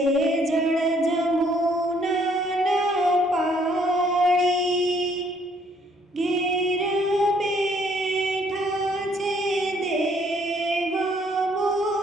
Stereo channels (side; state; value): both; normal; correlation 0.65